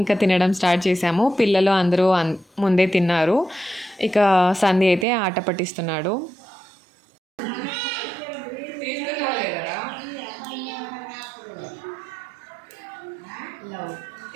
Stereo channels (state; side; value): drops out; left; at 5.1 s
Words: ఇంకా తినడం స్టార్ట్ చేసాము. పిల్లలు అందరూ ముందే తిన్నారు. ఇక సంధి అయితే ఆట పట్టిస్తున్నాడు.